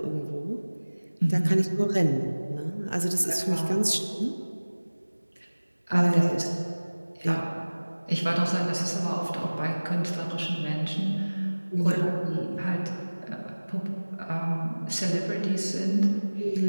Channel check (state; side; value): inverted; both; correlation -1.00